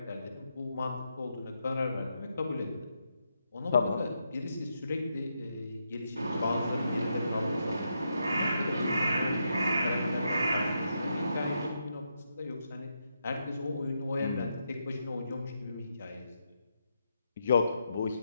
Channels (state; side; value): inverted; both; correlation -0.82